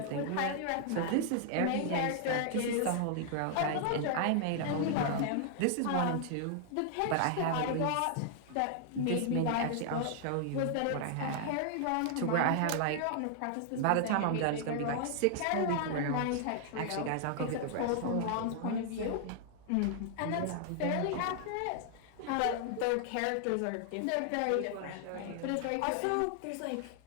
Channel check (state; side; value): different; both; correlation 0.00